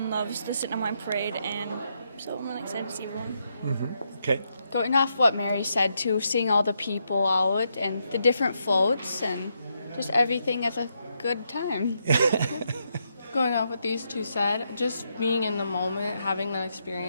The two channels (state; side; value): inverted; both; correlation -0.80